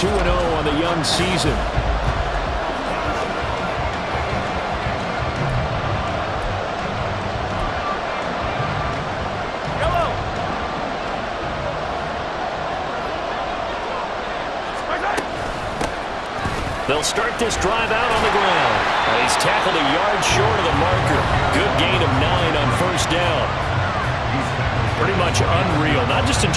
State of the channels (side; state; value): both; identical; correlation 1.00